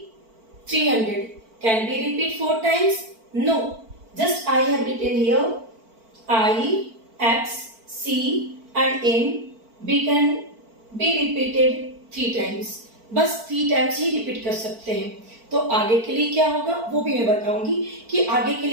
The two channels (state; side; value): late; left; 4.5 ms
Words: 300. Can we repeat 4 times? No. Just I have written here I, X, C and M we can be repeated 3 times. बस 3 times ही repeat कर सकते हैं। तो आगे के लिए क्या होगा वो भी मैं बताऊंगी कि आगे के